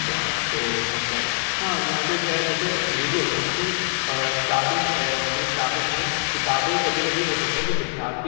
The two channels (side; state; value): right; silent; 63 dB below the other